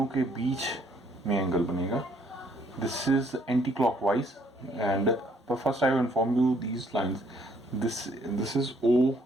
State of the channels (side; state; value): both; normal; correlation 0.66